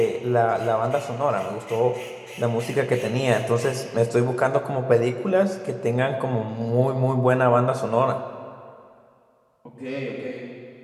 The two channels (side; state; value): both; identical; correlation 1.00